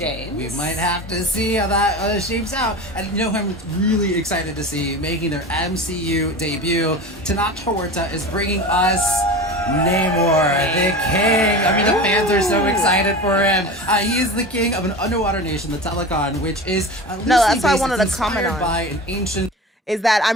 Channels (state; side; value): normal; both; correlation 0.31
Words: We might have to see how that shapes out. And you know who I'm really excited to see making their MCU debut? Tanat Horta is bringing us Namor, the king. I mean, the fans are so excited for him. He is the king of an underwater nation, the Telecon, which is that's what I wanted to comment on. By an ancient. Is that